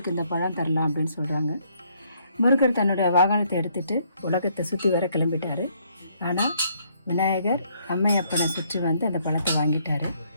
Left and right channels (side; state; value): both; inverted; correlation -0.69